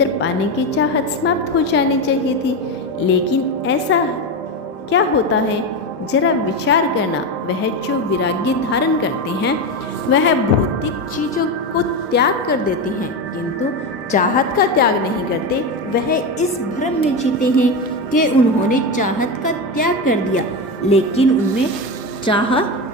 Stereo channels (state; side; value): normal; both; correlation 0.16